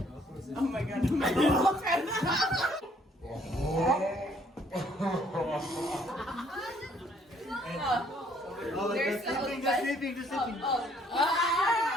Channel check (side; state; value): both; normal; correlation 0.64